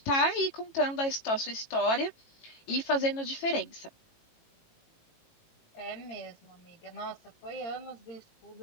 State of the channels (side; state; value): right; late; 18 ms